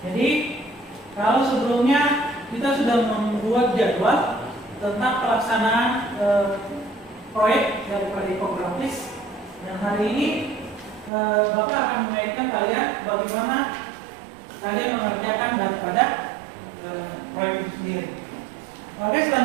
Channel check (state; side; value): drops out; left; at 11.1 s